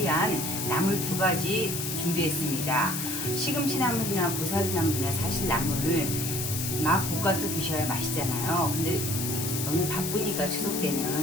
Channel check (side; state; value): left; noise; hiss, 3 dB below the sound